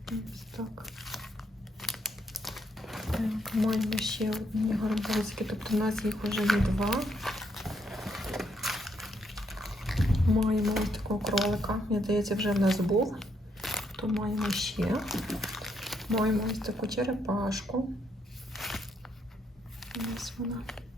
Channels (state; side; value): normal; both; correlation 0.75